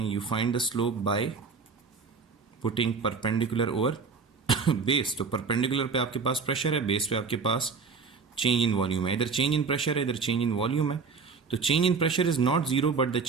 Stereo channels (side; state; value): left; quieter; 5.0 dB